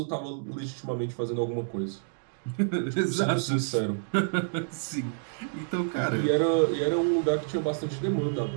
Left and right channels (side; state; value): left; silent; digital silence